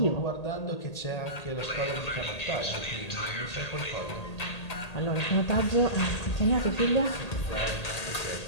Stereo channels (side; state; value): right; late; 1.8 ms